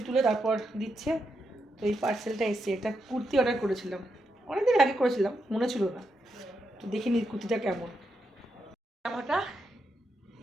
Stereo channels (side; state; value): both; normal; correlation 0.83